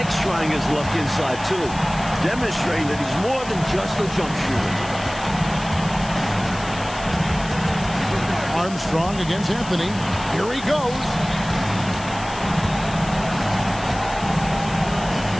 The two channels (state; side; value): noise; left; hiss, 15 dB below the sound